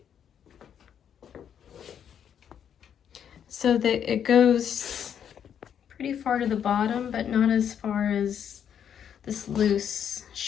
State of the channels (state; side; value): quieter; right; 8.7 dB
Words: So that it goes pretty far to the bottom, but not as far as this loose